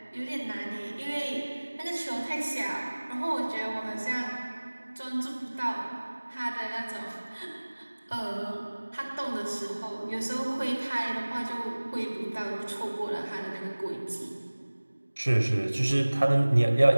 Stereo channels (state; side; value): inverted; both; correlation -1.00